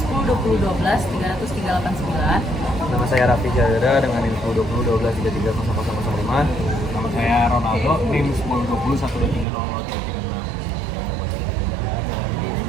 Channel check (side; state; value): left; drops out; at 9.5 s